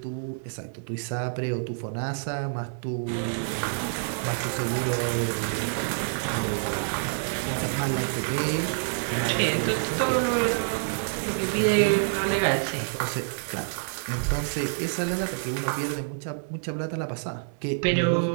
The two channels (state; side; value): silent; left; digital silence